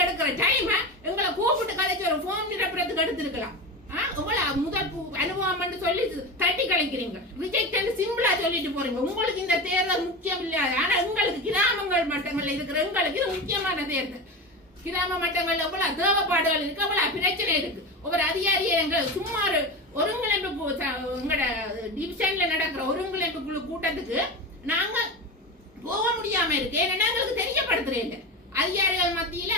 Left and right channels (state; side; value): normal; both; correlation 0.24